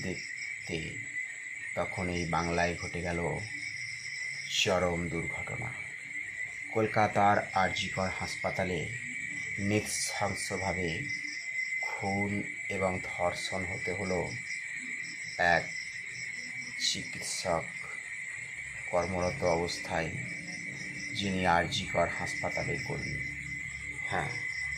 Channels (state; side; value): identical; both; correlation 1.00